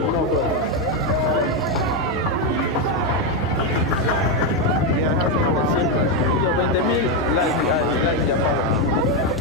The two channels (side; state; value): both; normal; correlation 0.05